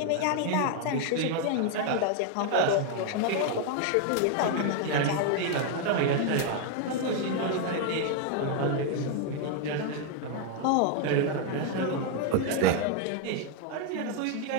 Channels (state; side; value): different; both; correlation 0.00